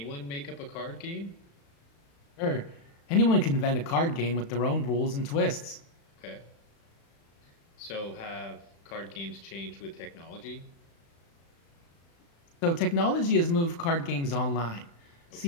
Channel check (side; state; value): right; late; 35 ms